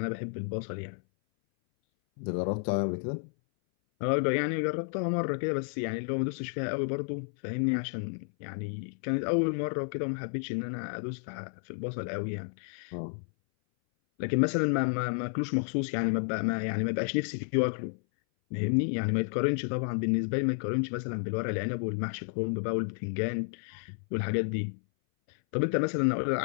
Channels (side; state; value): right; silent; 57 dB below the other